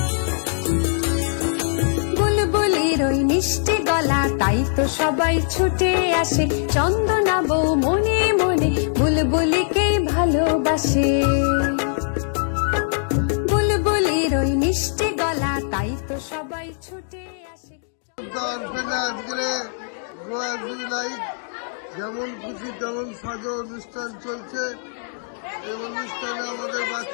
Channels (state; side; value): silent; right; digital silence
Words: ওই মিষ্টি গলা তাই তো সবাই ছুটে আসে, চন্দনা বউ মনে মনে বুলবুলিকে ভালোবাসে। বুলবুলির ওই মিষ্টি গলা তাই তো সবাই ছুটে আসে। যেমন খুশি তেমন সাজো অনুষ্ঠান চলছে। এই অনুষ্ঠানে আমাদের